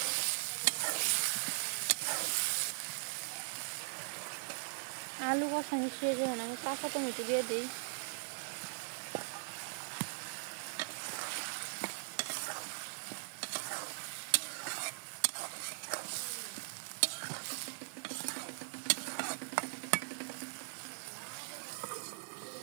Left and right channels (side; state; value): left; silent; 51 dB below the other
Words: आलू को संग खाना में काका टमेटो दे दी